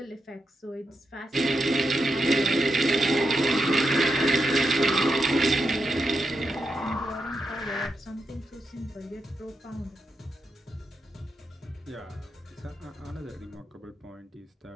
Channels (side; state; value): both; normal; correlation 0.85